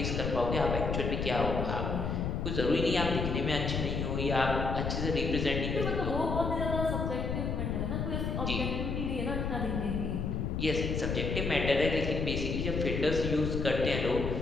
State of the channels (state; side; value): noise; left; rumble, 1 dB below the sound